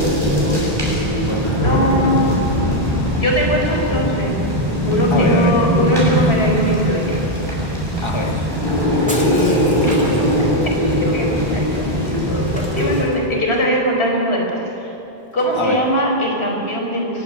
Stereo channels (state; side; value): normal; both; correlation 0.01